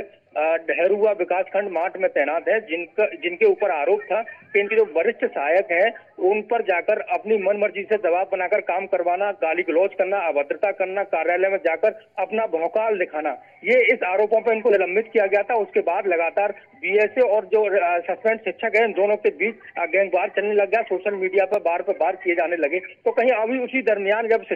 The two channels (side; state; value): both; identical; correlation 1.00